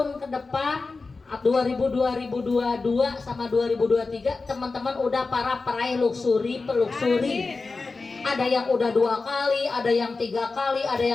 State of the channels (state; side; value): quieter; right; 4.0 dB